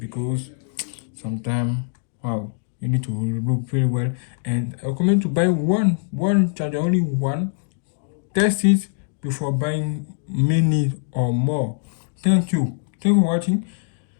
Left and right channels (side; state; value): right; silent; 64 dB below the other